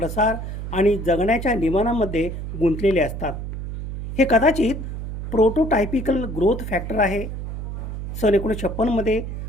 आणि जगण्याच्या नियमांमध्ये गुंतलेले असतात. हे कदाचित प्रोटोटायपिकल ग्रोथ फॅक्टर आहे. सन 1956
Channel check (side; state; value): right; noise; hum, 7 dB below the sound